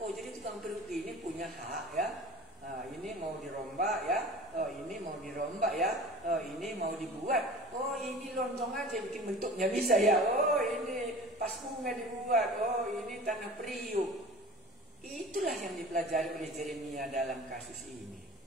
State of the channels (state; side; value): normal; both; correlation 0.41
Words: jadi tukang periuk ini punya hak ya. Nah, ini mau dirombak ya. Oh, ini mau dirombak ya. Oh, ini mau dibuat. Oh, ini lontong aja bikin bentuknya bisa ya. Oh, ini pas bunga dibuat. Oh, ini tanah periuk. Itulah yang dipelajari oleh Yeremia dalam kasus ini.